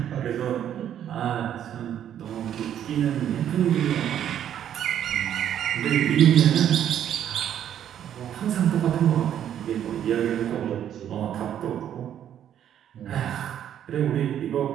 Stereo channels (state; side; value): quieter; left; 10.1 dB